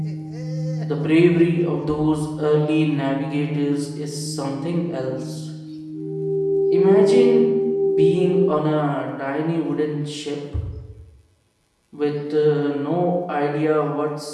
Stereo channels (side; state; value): both; identical; correlation 1.00